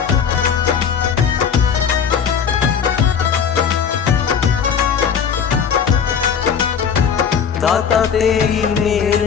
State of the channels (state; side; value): quieter; right; 7.1 dB